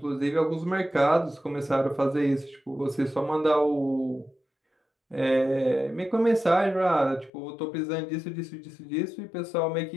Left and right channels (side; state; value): right; drops out; at 7.3 s